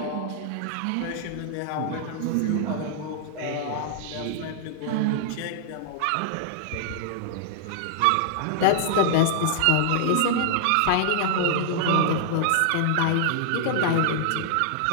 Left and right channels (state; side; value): different; both; correlation -0.01